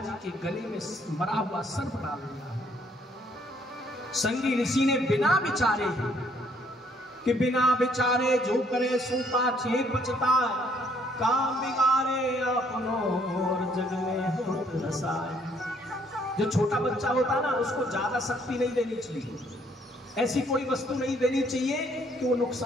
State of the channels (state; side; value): normal; both; correlation 0.66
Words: के गले में मरा हुआ सर्प डाल दिया। संगी ऋषि ने बिना विचारे कि बिना विचारे जो करे सो पाछे पछता, काम बिगाड़े अपनो और जग में होत रसाय। जो छोटा बच्चा होता ना, उसको ज्यादा शक्ति नहीं देनी चाहिए, ऐसी कोई वस्तु नहीं देनी चाहिए कि वो